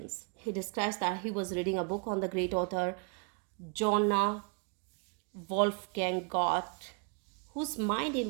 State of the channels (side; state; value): left; quieter; 35.3 dB